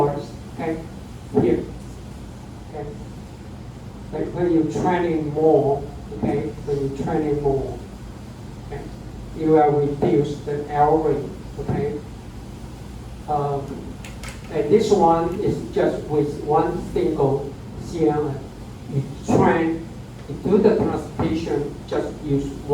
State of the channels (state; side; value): identical; both; correlation 1.00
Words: okay, here, okay. Like when you're training more, okay, okay, you will reduce the error rate, okay. And this one is just with one single CNN. You do the translation, just use